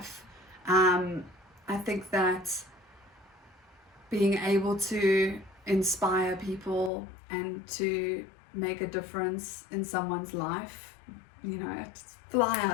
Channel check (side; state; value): right; drops out; at 6.9 s